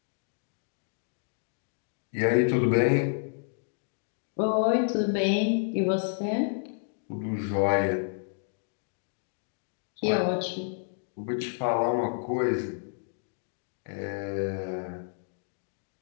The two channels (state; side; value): silent; right; digital silence